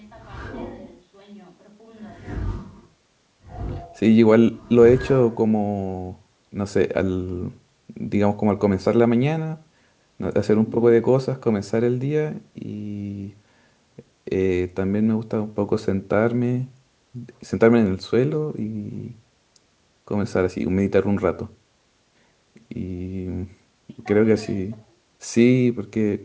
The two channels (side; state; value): both; identical; correlation 1.00